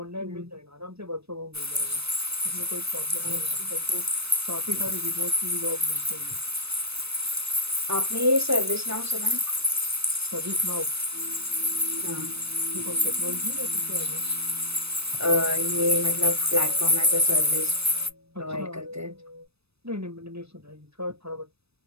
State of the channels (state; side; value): late; left; 0.78 ms